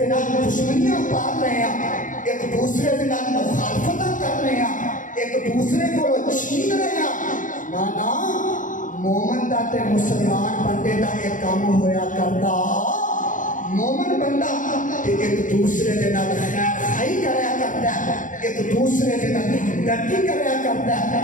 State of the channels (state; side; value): late; right; 0.38 ms